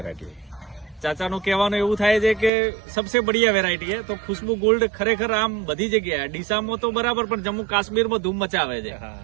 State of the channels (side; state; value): left; drops out; at 2.5 s